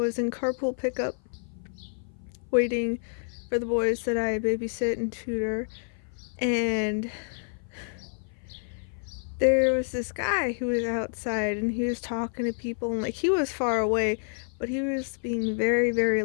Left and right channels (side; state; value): right; silent; 55 dB below the other